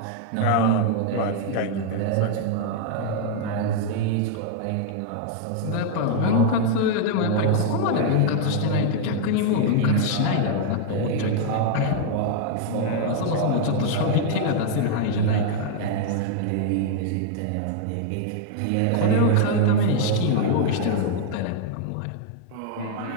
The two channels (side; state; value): both; different; correlation 0.00